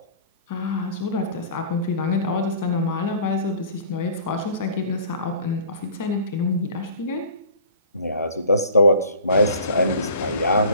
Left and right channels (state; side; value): inverted; both; correlation -0.46